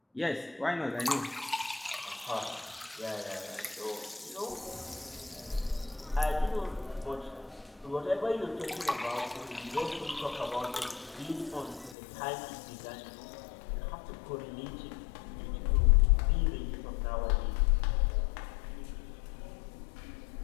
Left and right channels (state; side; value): drops out; right; at 12.0 s